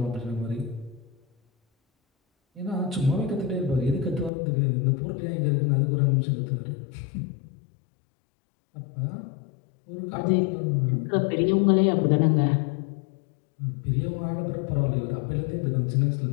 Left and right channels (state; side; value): drops out; right; at 4.3 s